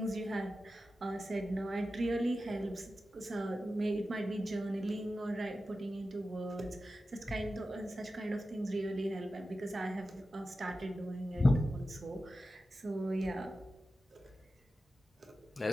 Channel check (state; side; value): normal; both; correlation 0.93